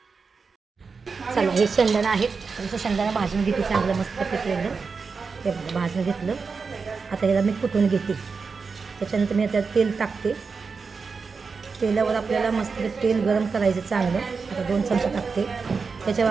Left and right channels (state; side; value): quieter; left; 4.9 dB